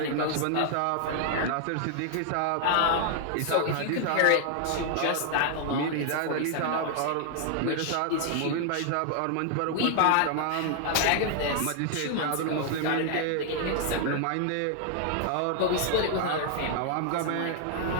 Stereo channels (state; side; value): different; both; correlation 0.00